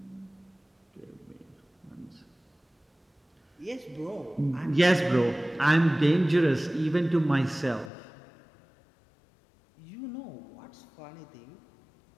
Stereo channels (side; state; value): right; drops out; at 7.9 s